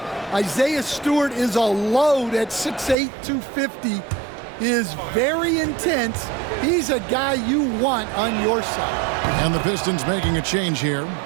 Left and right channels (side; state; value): left; drops out; at 3.0 s